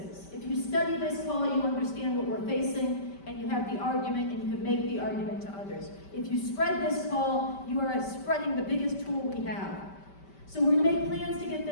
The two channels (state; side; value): late; right; 5.1 ms